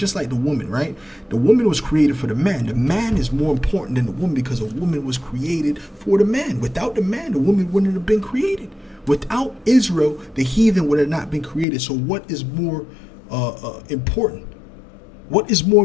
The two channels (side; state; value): right; drops out; at 11.7 s